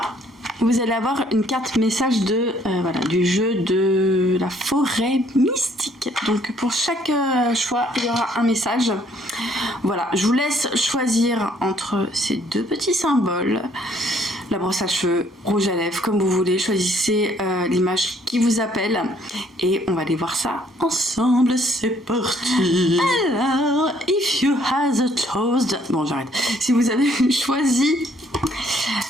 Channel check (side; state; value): both; normal; correlation 0.64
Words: vous allez avoir une carte message de voilà, du jeu de la forêt mystique. Donc pour chaque choix, il y aura un message. Voilà, je vous laisse choisir entre ces deux petits symboles. La brosse à cheveux, rouge à lèvres, comme vous voulez. Choisissez l'image qui vous appelle. Et on va aller voir ça ensemble. C'est parti. Alors, if you have a toast... Bon, j'arrête. Si vous avez choisi